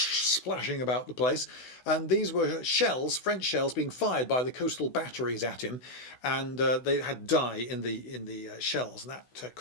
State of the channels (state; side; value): late; right; 16 ms